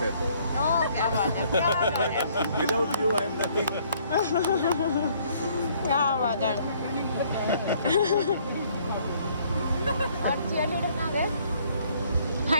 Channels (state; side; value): inverted; both; correlation -0.63